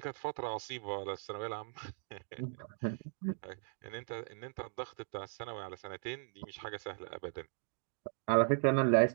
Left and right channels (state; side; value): silent; left; digital silence